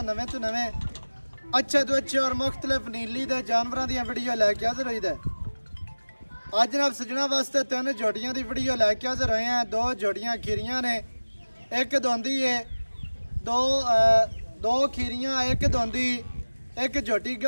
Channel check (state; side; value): inverted; both; correlation -1.00